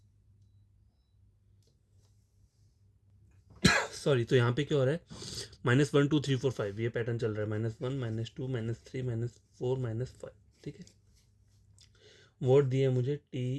Sorry, तो यहाँ पे क्या हो रहा है, minus one two three four five, ये पैटर्न चल रहा है, minus one minus to minus three minus four minus five, ठीक है। वर्ड दिए मुझे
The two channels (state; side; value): identical; both; correlation 1.00